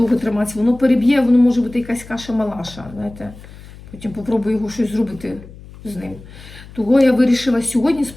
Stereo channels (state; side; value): noise; left; hum, 18 dB below the sound